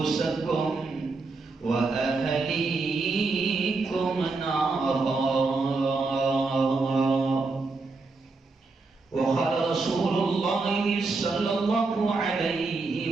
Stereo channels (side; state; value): left; quieter; 3.8 dB